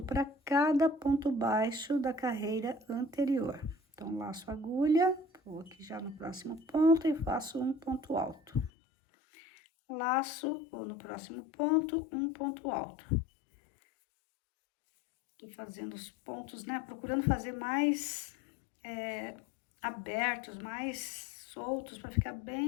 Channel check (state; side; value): drops out; right; at 8.7 s